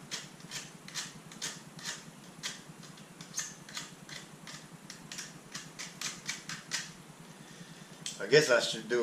I guess I should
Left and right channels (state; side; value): identical; both; correlation 1.00